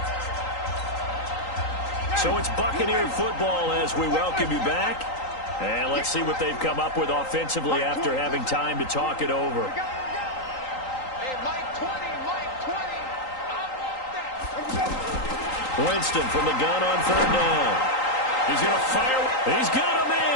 So it's Buccaneer football as we welcome you back. And let's see what they've come up with offensively after having time to talk it over. Winston from the gun on 3rd down. He's going to fire. He's got a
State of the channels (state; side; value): late; right; 3.8 ms